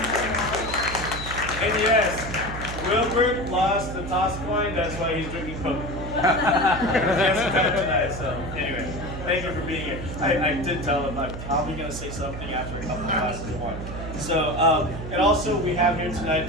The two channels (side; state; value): right; noise; hum, 8 dB below the sound